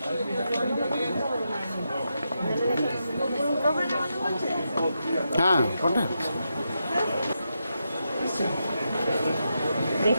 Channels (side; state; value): both; inverted; correlation -0.85